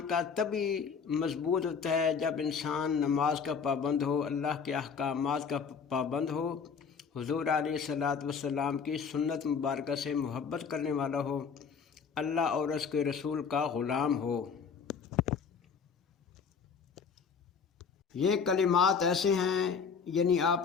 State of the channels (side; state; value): right; quieter; 6.0 dB